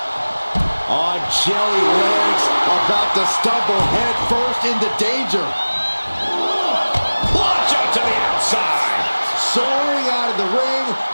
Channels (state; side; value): inverted; both; correlation -1.00